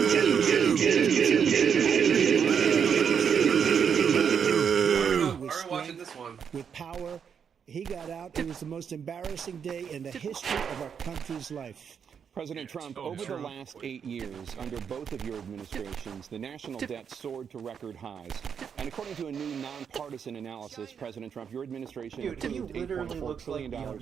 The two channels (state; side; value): quieter; left; 7.2 dB